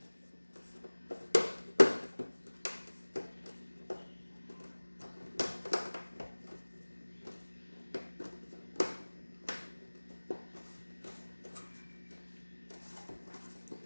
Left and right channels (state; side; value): inverted; both; correlation -1.00